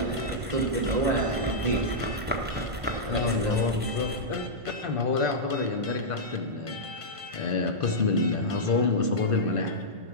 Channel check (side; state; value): left; late; 1.5 ms